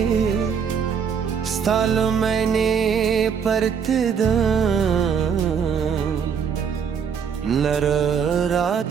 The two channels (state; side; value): quieter; left; 7.0 dB